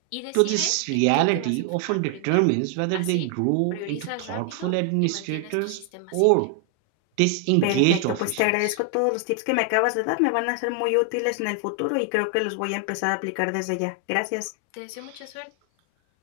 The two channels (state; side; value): different; both; correlation 0.00